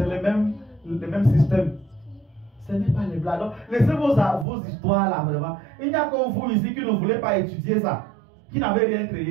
le même système. Ce n'est pas les blagues. Donc, laissez vos histoires là, vraiment. Il n'y a que vous ici qui ne voulez pas étudier ça, qui n'avez rien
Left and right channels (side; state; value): left; drops out; at 4.5 s